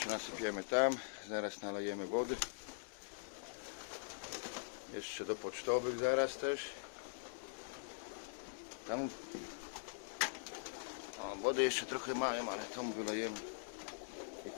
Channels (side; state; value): right; silent; digital silence